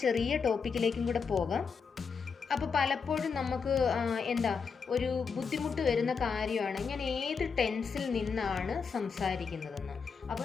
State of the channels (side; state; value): right; quieter; 5.6 dB